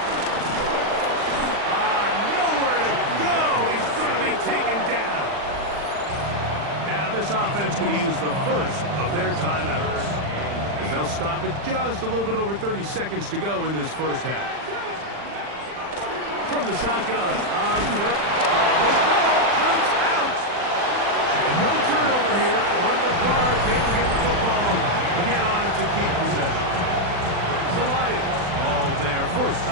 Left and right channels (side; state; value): left; late; 40 ms